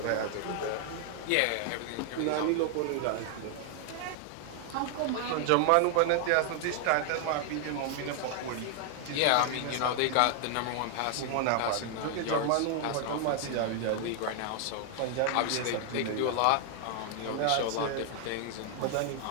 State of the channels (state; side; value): different; both; correlation 0.00